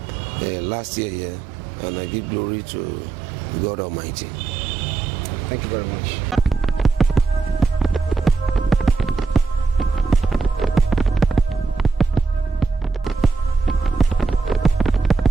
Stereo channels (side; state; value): left; quieter; 4.4 dB